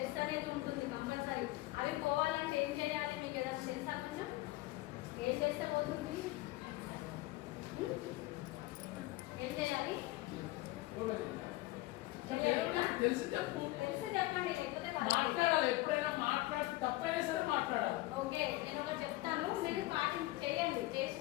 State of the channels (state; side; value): quieter; right; 19.0 dB